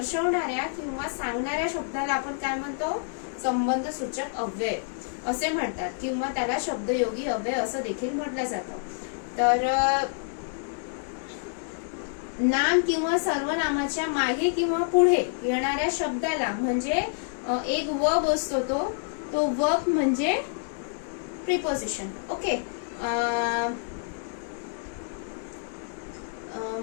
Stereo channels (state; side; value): silent; right; digital silence